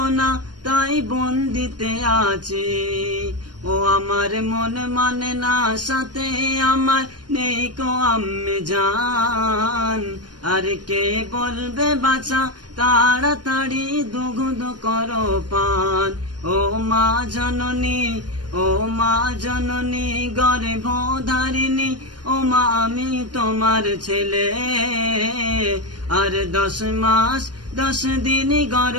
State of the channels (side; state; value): left; late; 0.69 ms